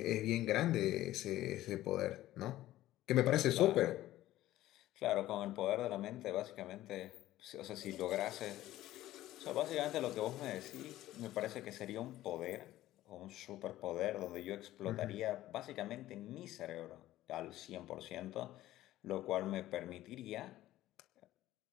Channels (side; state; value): right; quieter; 14.9 dB